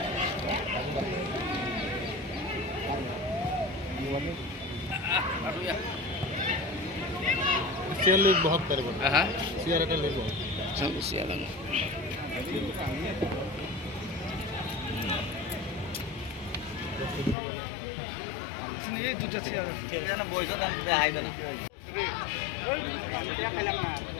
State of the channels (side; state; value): right; drops out; at 17.4 s